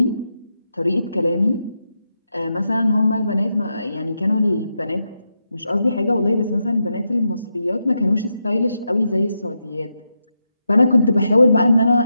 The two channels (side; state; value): both; inverted; correlation -0.85